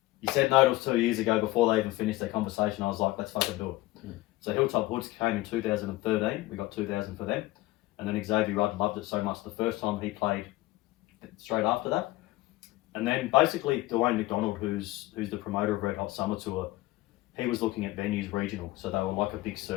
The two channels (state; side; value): quieter; right; 18.9 dB